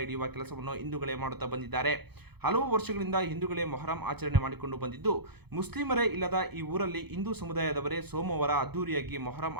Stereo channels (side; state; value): left; late; 0.98 ms